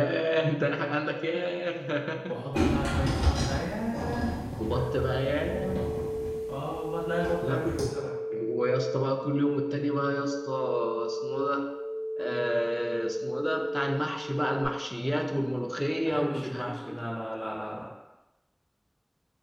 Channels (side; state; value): both; identical; correlation 1.00